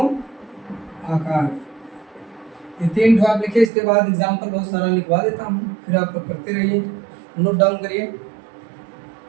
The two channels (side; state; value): left; drops out; at 3.7 s